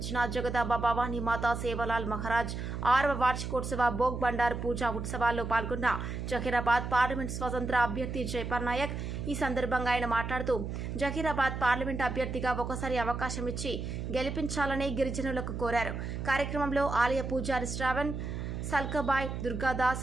జగదాంబ భవానీ మాతా సేవాలాల్ మహారాజ్ 6వ వార్షికోత్సవ భోగ్ బండార్ పూజా ఉత్సవాల్లో పాల్గొన్న జహీరాబాద్ పార్లమెంట్ స్వతంత్ర అభ్యర్థి జైపాల్ నాయక్ ఈ సందర్భంగా ఆయన మాట్లాడుతూ జహీరాబాద్ పార్లమెంట్ అభ్యర్థిగా ఒకసారి అవకాశం ఇచ్చి గెలిపించాలని గిరిజనులకు కోరారు. కార్యక్రమంలో ఆలయ పూజారి శ్రావణ్, సల్కబాయ్,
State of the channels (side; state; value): right; noise; hum, 5 dB below the sound